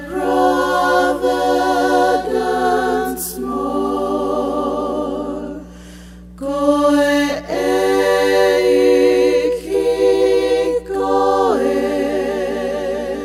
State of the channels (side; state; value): both; identical; correlation 1.00